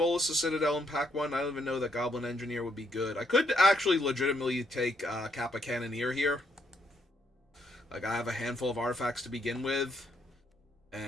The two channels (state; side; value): normal; both; correlation 0.73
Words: the Citadel in pack 1? I don't even know that Goblin Engineer would be good. I could actually legitimately take Kappa Cannoneer here. Like, I have a handful of artifacts to begin with,